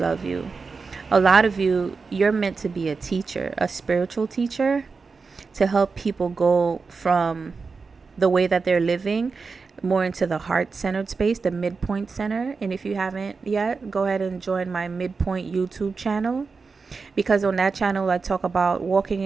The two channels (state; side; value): quieter; left; 4.7 dB